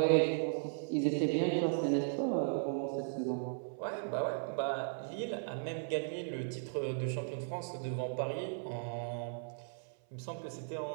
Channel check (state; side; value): silent; left; 53 dB below the other